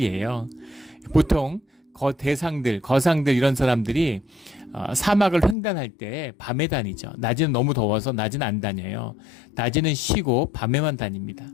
보통 거상들 이런 사람들이 사막을 횡단할 때 밤에 다니죠. 낮에는 너무 더워서 낮은 안 다녀요. 낮에는 쉬고 밤에만 다닙니다.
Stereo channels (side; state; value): right; drops out; at 5.6 s